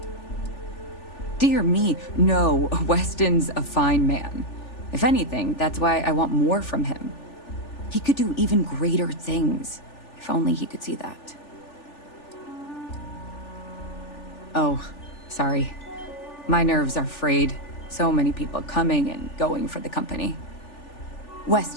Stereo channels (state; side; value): late; right; 3.4 ms